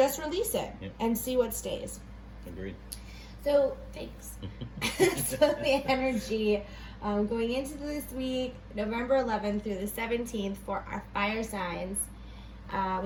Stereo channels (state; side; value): identical; both; correlation 1.00